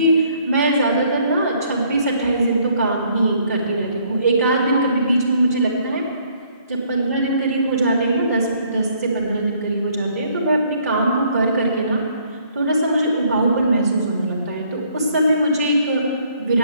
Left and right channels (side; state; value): both; inverted; correlation -0.65